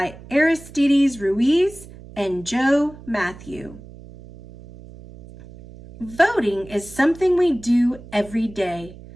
Aristides Ruiz and Joe Matthew. Voting is something we do every day.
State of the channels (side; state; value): right; noise; hum, 18 dB below the sound